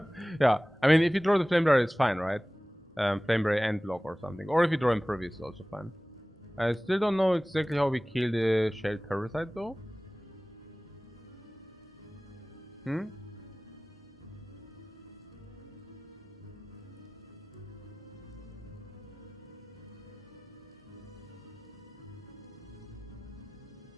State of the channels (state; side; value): normal; both; correlation 0.98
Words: Yeah, I mean, if you draw the Flamebearer, it's fine, right? Flamebearer and block or something. Or if you draw Impervious, it's also fine. I still don't know exactly how we kill the Shelled Parasite, though.